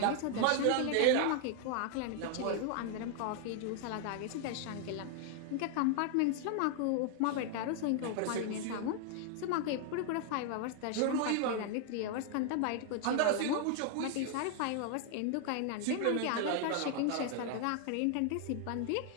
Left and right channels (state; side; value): different; both; correlation 0.00